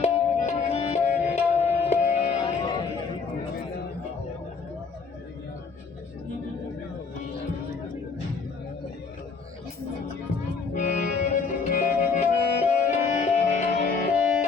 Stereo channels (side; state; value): right; quieter; 5.0 dB